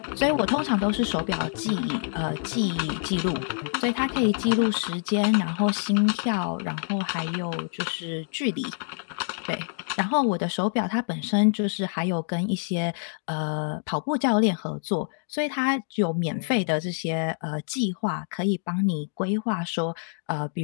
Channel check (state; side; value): silent; right; digital silence